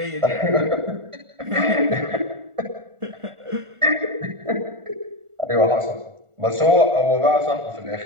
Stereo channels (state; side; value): late; left; 1.4 ms